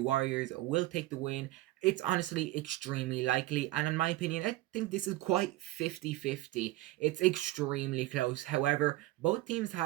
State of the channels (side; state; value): left; quieter; 17.6 dB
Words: will take the win? It's honestly extremely likely, and in my opinion, I think this is quite 50-50. It's extremely close. However, both teams